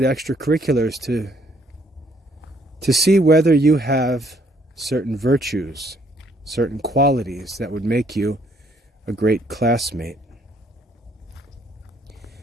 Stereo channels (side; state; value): both; normal; correlation 0.67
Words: extracurriculars to see whether you have certain virtues, certain qualities that would make you a great classmate.